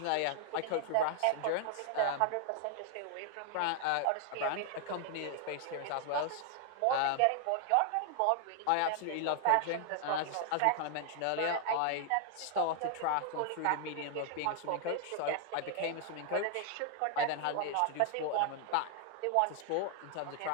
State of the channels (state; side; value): different; both; correlation 0.00